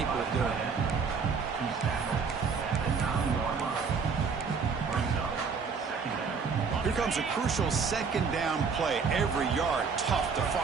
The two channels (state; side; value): quieter; left; 5.5 dB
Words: of doing. Here comes a crucial 2nd down play. Every yard tough to